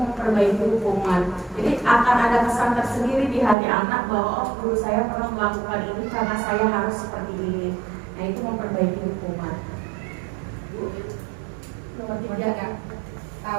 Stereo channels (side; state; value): left; drops out; at 3.6 s